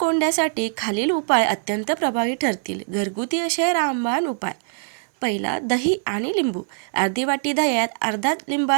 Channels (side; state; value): left; silent; 62 dB below the other